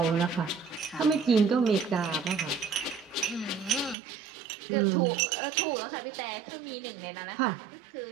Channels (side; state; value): left; drops out; at 4.0 s